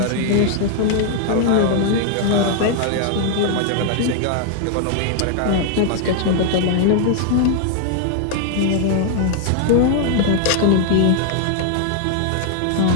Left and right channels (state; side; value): different; both; correlation 0.00